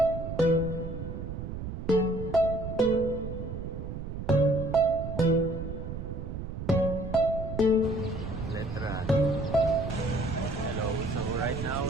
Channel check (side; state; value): right; noise; rumble, 6 dB below the sound